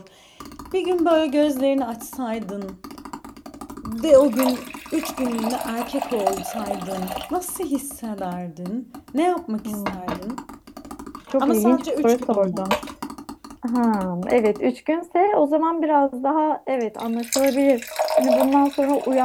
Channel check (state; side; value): identical; both; correlation 1.00